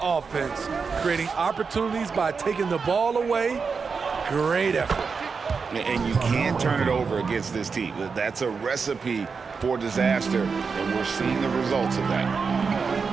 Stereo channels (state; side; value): quieter; left; 5.2 dB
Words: offense, creating opportunities by taking the ball away. Great effort. And you can't turn it over against this team. That's a recipe for disaster, and we're seeing the results of that.